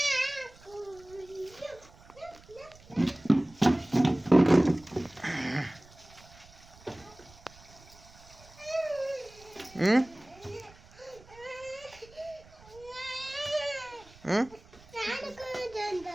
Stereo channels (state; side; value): noise; right; rumble, 23 dB below the sound